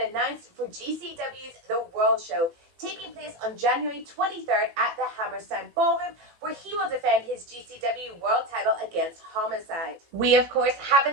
announced for GCW's The World Show, taking place on January 23rd at the Hammerstein Ballroom, where he will defend his GCW World title against Homicide. We, of course,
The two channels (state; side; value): late; left; 18 ms